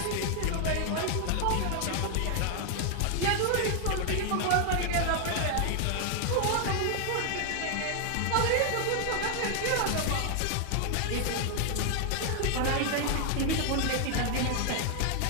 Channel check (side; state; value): both; different; correlation 0.00